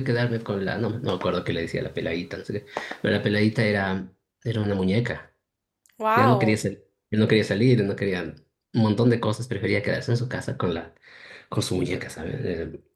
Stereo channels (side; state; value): both; identical; correlation 1.00